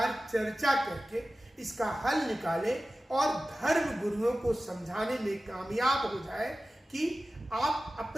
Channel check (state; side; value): normal; both; correlation 0.95